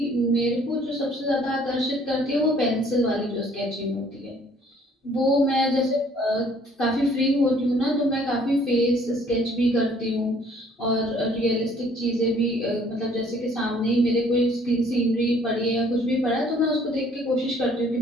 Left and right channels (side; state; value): both; normal; correlation 0.59